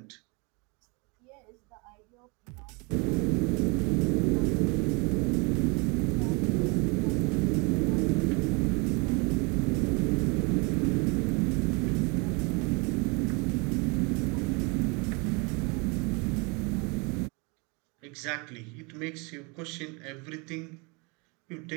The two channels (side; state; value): left; quieter; 30.0 dB